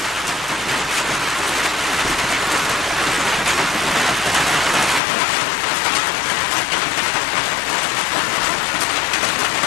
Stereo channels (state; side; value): drops out; right; at 5.0 s